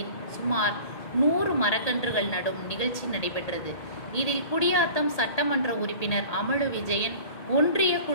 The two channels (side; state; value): right; late; 1.8 ms